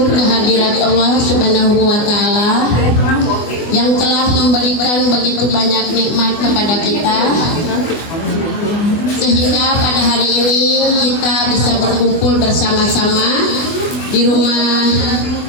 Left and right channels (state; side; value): late; right; 24 ms